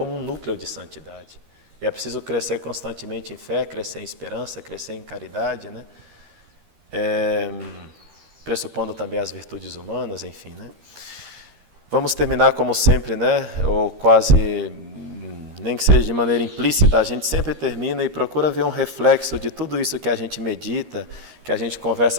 um núcleo de santidade. E é preciso crescer constantemente em fé, crescer em esperança, crescer em caridade, né? Pressupondo também as virtudes humanas, enfim, né? Vamos terminar como sempre, né? Ou quase, nem que seja de maneira implícita, a gente sempre termina e procura ver um reflexo de tudo isso que a gente medita, que a gente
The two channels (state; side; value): late; left; 13 ms